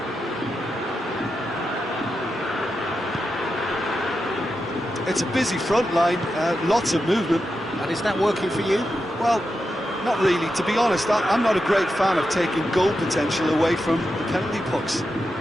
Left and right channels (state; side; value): normal; both; correlation 0.88